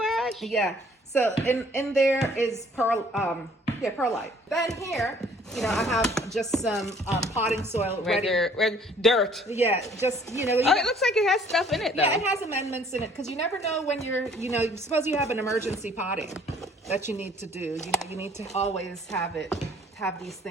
ash? Yeah. So in there is perlite. Then here, you know, I have just some potting soil regular dirt. Yeah, just, you know. Oh, it looks like it has stuff in it, though. Yeah, it has amendments in it, because you never know when you're, you know, suppose you have an emergency potting that you need to do. You know, you need to always have these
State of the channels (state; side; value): normal; both; correlation 0.57